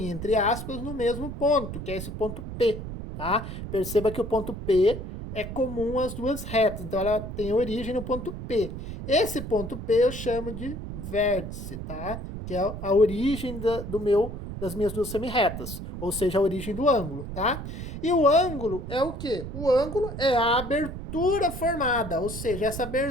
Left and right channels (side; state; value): right; noise; rumble, 8 dB below the sound